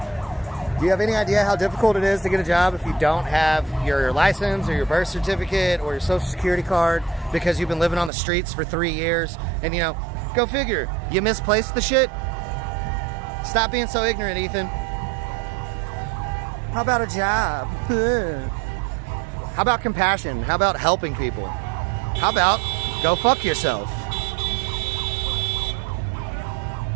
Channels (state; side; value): drops out; left; at 8.1 s